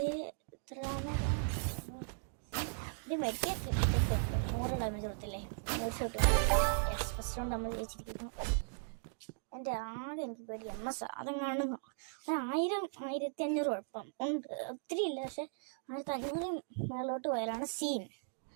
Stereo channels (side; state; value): left; silent; digital silence